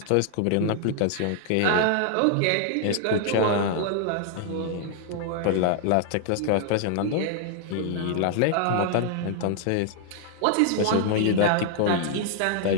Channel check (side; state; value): both; different; correlation -0.01